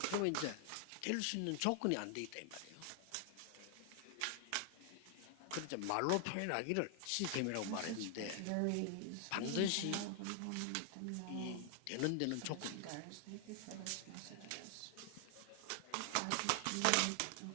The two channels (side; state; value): both; different; correlation 0.00